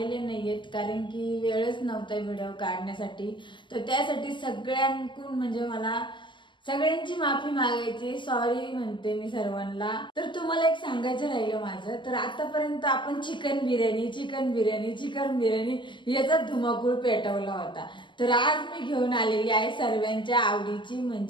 नाहीयेत, कारण की वेळच नव्हता व्हिडिओ काढण्यासाठी। तर त्यासाठी सगळ्यांकडून म्हणजे मला सगळ्यांची माफी मागायची, सॉरी म्हणते मी सर्वांना। तर तुम्हाला एक सांगायचं राहिलं माझं, तर आतापर्यंत आपण चिकन बिर्याणी याचा धुमाकूळ पेटवला होता। तर आज मी घेऊन आलेली आहे सर्वांच्या आवडीची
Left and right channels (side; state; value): right; late; 0.23 ms